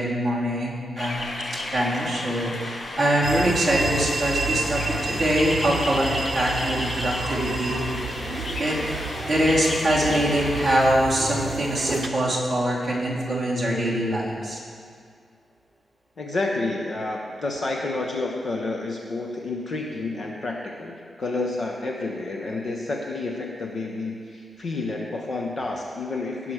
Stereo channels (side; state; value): both; normal; correlation 0.83